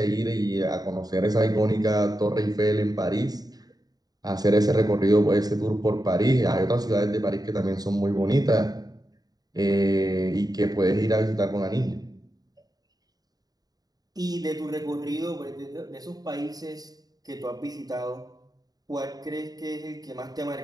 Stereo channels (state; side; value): late; left; 0.18 ms